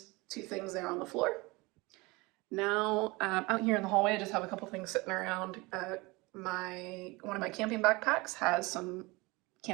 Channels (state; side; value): quieter; left; 24.0 dB